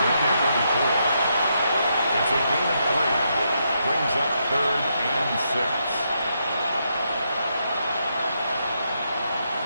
down. It's a gain of 3. Brings up third and 6.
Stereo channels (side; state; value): both; inverted; correlation -0.80